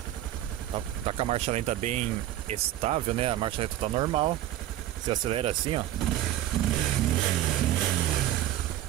tá com a marcha lenta bem estável, né? A marcha lenta tá normal. Você acelera assim, ó,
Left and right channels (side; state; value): left; quieter; 13.3 dB